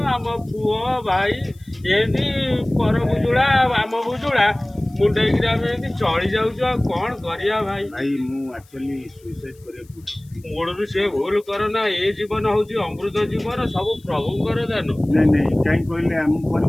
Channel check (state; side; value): noise; left; hiss, 30 dB below the sound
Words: ଆମ ପୁଅ ଭାଇ ଏମିତି ପର ବୁଜୁଳା, ଆମ ବୁଜୁଳା ମୁଣ୍ଡେଇକିରି ଆମେ ଏମିତି ଚଳି ଯାଉଛୁ। ଆଉ କ'ଣ କରିବା ଭାଇ? ଭାଇ ମୁଁ ଆକ୍ଚୁଆଲି ସୁଇସାଇଡ୍ କରିବାକୁ ମୂଳରୁ ସେ ଭୁଲ କରନା। ଏ ଜୀବନ ହେଉଛି ଅମୃତ ଜୀବନ, ସବୁ ପ୍ରଭୁଙ୍କର ଦାନ। ନାଇଁ ନାଇଁ, କାହିଁ କହିଲେ ଆମ